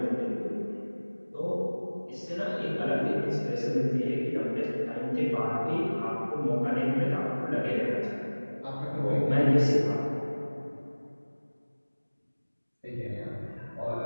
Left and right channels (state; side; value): inverted; both; correlation -1.00